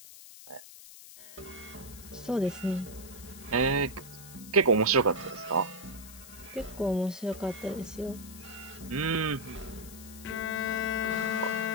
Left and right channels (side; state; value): left; noise; hiss, 16 dB below the sound